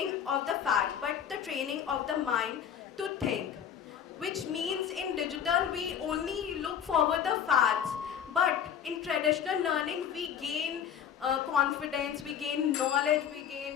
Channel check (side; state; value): right; quieter; 8.5 dB